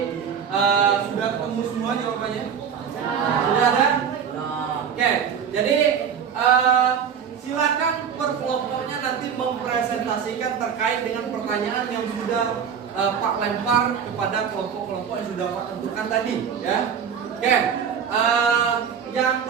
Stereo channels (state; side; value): quieter; left; 7.4 dB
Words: sudah ketemu semua jawabannya? Sudah ada? Oke, jadi silakan per kelompoknya nanti mempresentasikan terkait dengan pertanyaan yang sudah Pak lempar kepada kelompok-kelompok yang sudah Pak tentukan tadi ya. Oke, yang